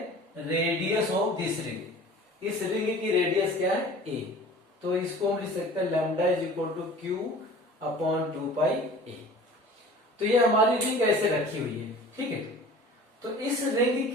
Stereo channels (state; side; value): normal; both; correlation 0.44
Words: रेडियस ऑफ दिस रिंग। इस रिंग की रेडियस क्या है, ए। तो इसको हम लिख सकते हैं lambda is equal to Q upon 2 pi A. तो ये हमारी रिंग ऐसे रखी हुई है, ठीक है। तो इस रिंग